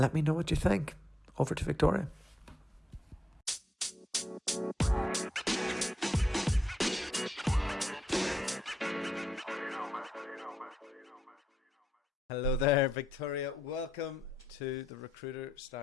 me know what you think. Over to Victoria. Hello there, Victoria. Welcome to the Recruiter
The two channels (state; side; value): normal; both; correlation 0.80